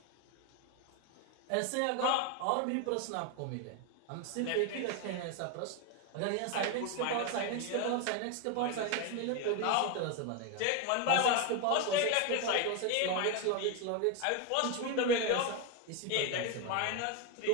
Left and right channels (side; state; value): both; different; correlation 0.02